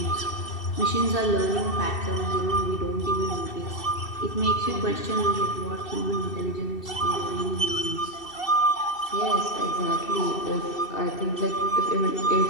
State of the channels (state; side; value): late; right; 2.7 ms